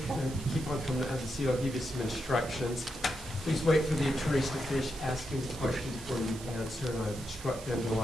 keep on coming to have a seat. I'll give you some instructions. Please wait for the attorneys to finish asking the questions before you answer, and I've instructed them to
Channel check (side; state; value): right; noise; hiss, 15 dB below the sound